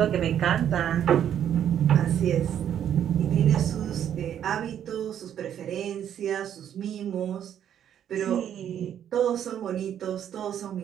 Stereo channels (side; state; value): left; quieter; 9.8 dB